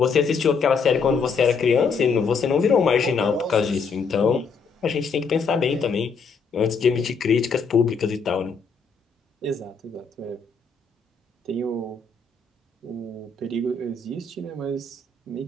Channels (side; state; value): right; quieter; 5.1 dB